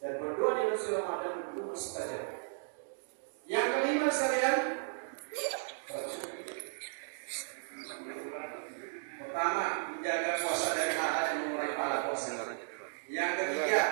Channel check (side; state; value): left; silent; digital silence